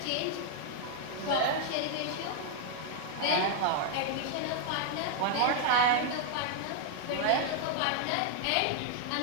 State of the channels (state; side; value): different; both; correlation 0.00